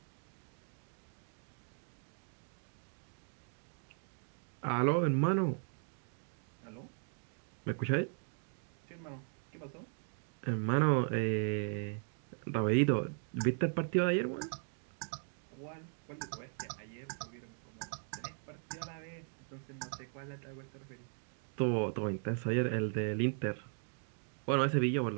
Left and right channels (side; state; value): left; silent; 52 dB below the other